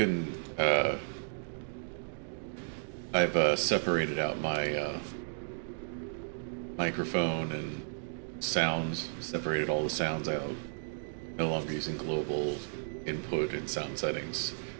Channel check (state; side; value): silent; left; digital silence